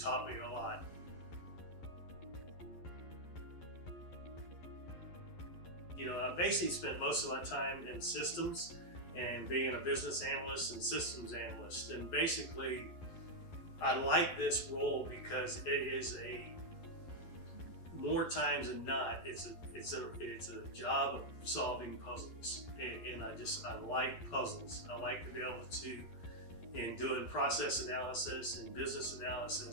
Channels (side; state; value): right; late; 11 ms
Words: me a lot. I basically spent most of my time in systems and being a business analyst and systems analyst. And basically, I like this role because it is more times than not, it's a job of solving puzzles. And I like puzzles. I like to be able to, in doing process analysis and business